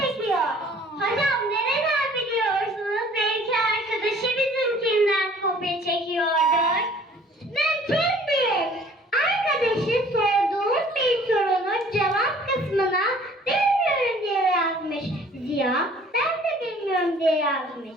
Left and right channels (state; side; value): normal; both; correlation 0.53